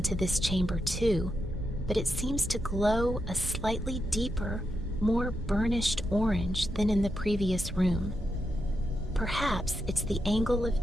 this chamber too, but it seems to glow a slightly deeper, more burnished orange than in the previous room. Perhaps it's the angle of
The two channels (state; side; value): normal; both; correlation 0.85